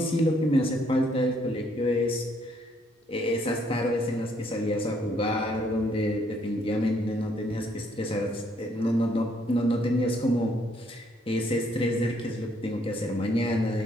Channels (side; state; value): both; normal; correlation 0.69